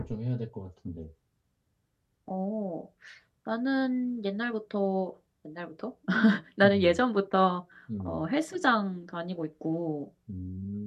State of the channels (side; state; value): both; identical; correlation 1.00